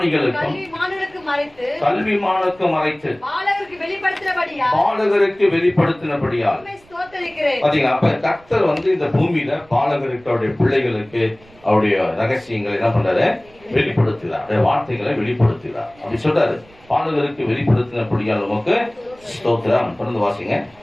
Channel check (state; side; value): noise; right; rumble, 27 dB below the sound